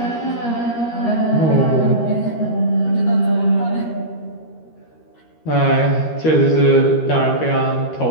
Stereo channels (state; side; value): late; right; 13 ms